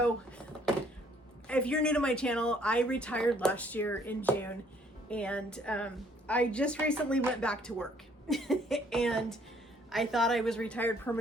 if you're new to my channel, I retired last year in June, and I just recently went back to work. And I thought I was retired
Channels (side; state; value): both; normal; correlation 0.62